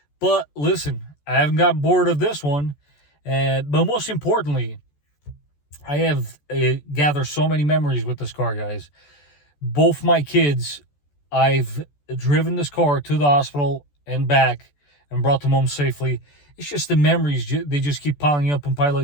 But listen, I haven't got bored of this one. But most importantly, I have gathered so many memories with this car, guys. Both my kids, I've driven this car to the hospital and back and brought them home safely. It's just the memories, they just keep piling up and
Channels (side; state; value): right; late; 14 ms